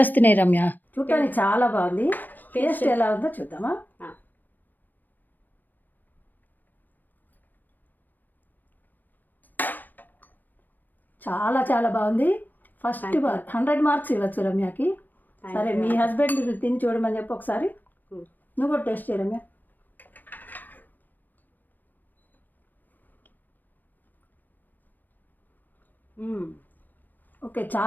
రమ్య. చూడటానికి చాలా బాగుంది. టేస్ట్ ఎలా ఉందో చూద్దామా? చాలా చాలా బాగుంది. ఫస్ట్ 100 మార్క్స్ ఇవ్వచ్చు రమ్యకి. సరే, మీ హస్బెండ్ తిని చూడమని చెప్పి ఒకసారి నువ్వు కూడా టేస్ట్ చేయ రమ్య. ఓకే,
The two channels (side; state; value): right; late; 0.089 ms